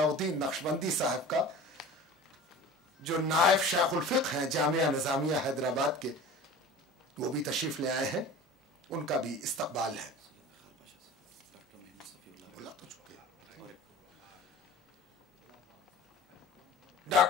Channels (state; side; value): normal; both; correlation 0.38